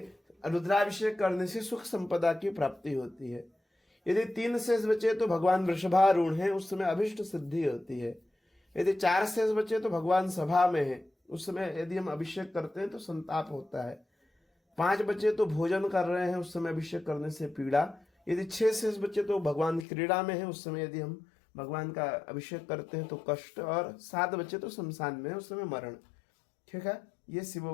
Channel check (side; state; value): right; drops out; at 19.9 s